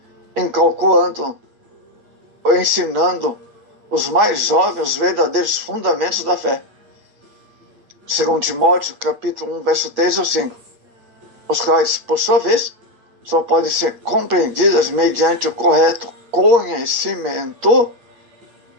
incalculando ou ensinando os mais jovens os verdadeiros fundamentos da fé. Segundo Timóteo, capítulo 1, verso 3 ou 5, os quais, por sua vez, só podem ser compreendidas mediante o correto conhecimento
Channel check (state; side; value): late; left; 8.4 ms